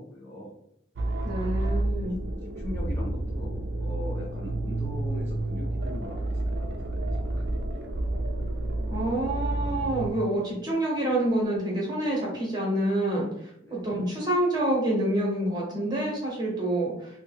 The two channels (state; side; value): normal; both; correlation 0.65